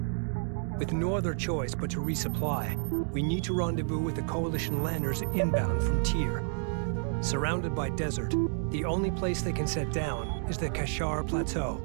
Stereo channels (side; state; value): left; silent; 58 dB below the other